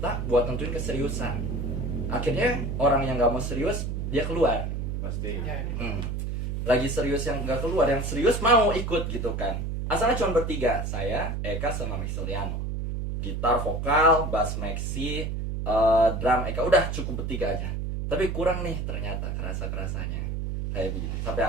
buat nentuin keseriusan. Akhirnya orang yang nggak mau serius dia keluar. Pasti. Ya, Lagi serius yang nggak keluar, yang serius mau ikut gitu kan. Asalnya cuma bertiga, saya, Eka sama Maxiliano. Gitar, vokal, bass Maxi, drum Eka, udah cukup bertiga aja. Tapi kurang nih ternyata kerasanya kayak begitu. Sampai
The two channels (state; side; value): noise; right; hum, 3 dB below the sound